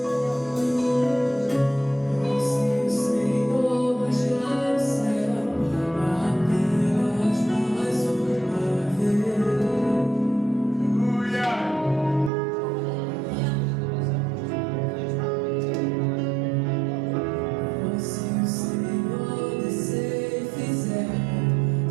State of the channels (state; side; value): drops out; left; at 12.3 s